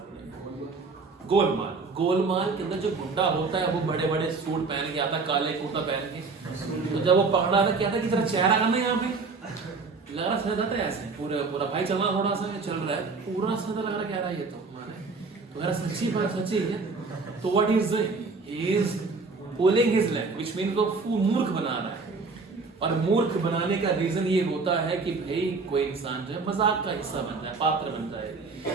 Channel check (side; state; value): left; quieter; 4.2 dB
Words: गोलमाल। गोलमाल के अंदर जो गुंडा होता है वो बड़े बड़े सूट पहन के आता, काले कुर्ता पहन के। तो जब वो पकड़ा था क्या था कि तेरा चेहरा कम है यहाँ पे, लग रहा समझ आता है ऐसे पूरा पूरा भाई चल रहा, थोड़ा सा चल रहा है पूरा समझ लग रहा कह रहा है ये तो मेरा सच्ची बात सच्ची है। तो what is doing is pulling his leg, which means वो मूर्ख बना रहा है। और मूर्ख बनाने का रीजन ये होता है कि भाई कोई इंसान जो है मजाक का हिस्सा बन जाए, पात्र बन जाए।